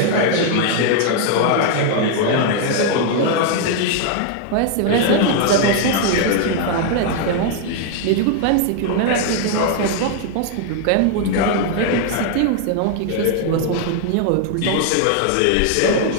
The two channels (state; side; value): different; both; correlation 0.00